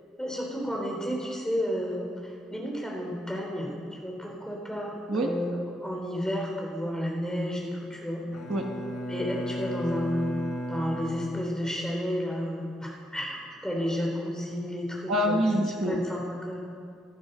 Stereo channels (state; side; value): normal; both; correlation 0.78